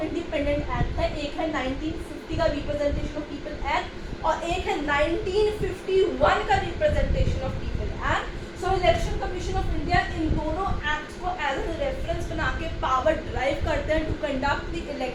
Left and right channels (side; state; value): both; identical; correlation 1.00